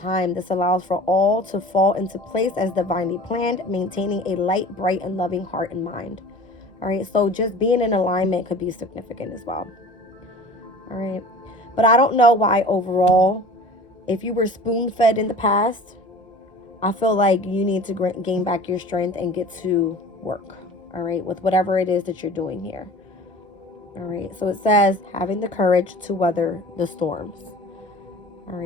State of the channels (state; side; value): normal; both; correlation 0.42